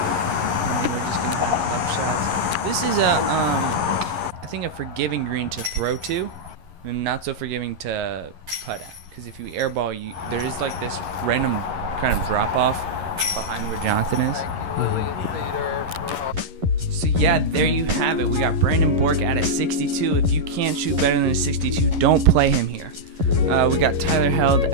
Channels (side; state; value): left; late; 11 ms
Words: And we're just going to have up shots. This is I think a forgiving green to throw to, and not so forgiving to putt at. Because if you airball, there is like this random kind of drop off behind where Jonathan is. So yeah, there you have it. We got Brandon Bork at a 62. If you can't shoot better than a 62, don't play him here. We got Tyler Held